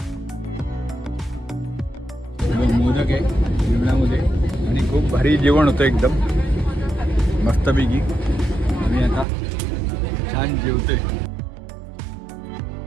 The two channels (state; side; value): drops out; left; at 9.2 s